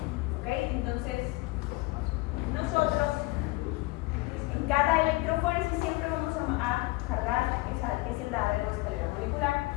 ¿ok? Entonces, nosotros en cada electroforesis siempre vamos a cargar ese ladder o escalera molecular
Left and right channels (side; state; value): right; quieter; 21.9 dB